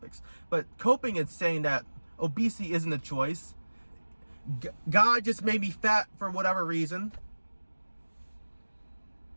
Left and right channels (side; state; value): both; inverted; correlation -1.00